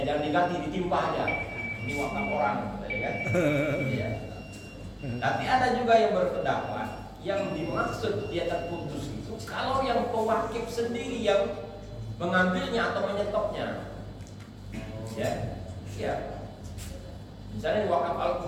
jangan diganti, ditimpa aja. Ini wakaf orang, ya kan? Iya. Tapi ada juga yang berpendapat yang dimaksud dia terputus itu kalau yang pewakif sendiri yang mengambilnya atau menyetopnya. Ya. Misalnya wakaf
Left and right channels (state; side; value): identical; both; correlation 1.00